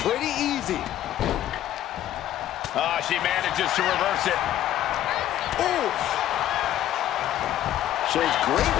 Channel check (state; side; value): quieter; right; 12.5 dB